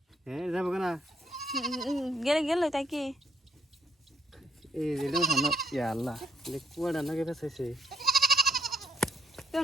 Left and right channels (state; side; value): normal; both; correlation 0.70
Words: হ্যাঁ যাবো না গেলে গেলে তাই কি এই রেডিও থানো। ইয়া আল্লাহ কুয়াটা নাকি পেছাইছে।